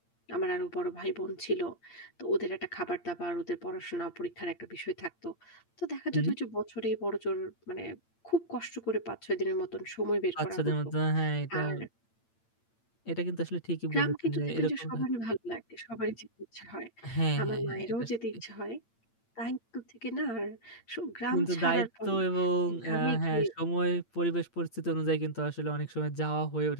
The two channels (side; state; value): right; late; 8.8 ms